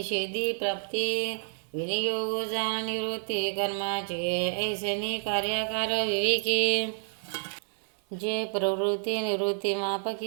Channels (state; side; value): silent; left; 59 dB below the other